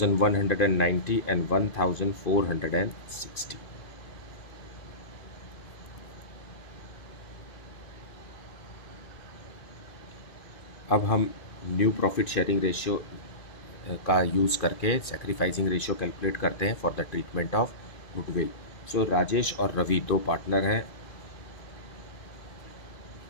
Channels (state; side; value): late; right; 2.5 ms